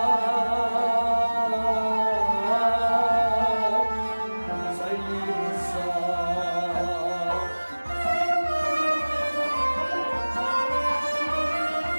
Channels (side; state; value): both; inverted; correlation -1.00